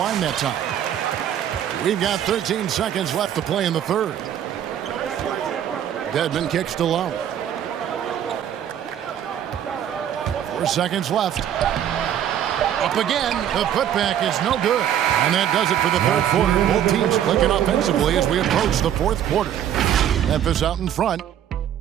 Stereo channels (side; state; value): left; quieter; 10.2 dB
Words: that time. We've got 13 seconds left to play in the third. Dedmon kicks to Lowry. 4 seconds left. Up again. The putback is no good. And that does it for the third quarter. Both teams clicking offensively as we approach the fourth quarter. Memphis out in front.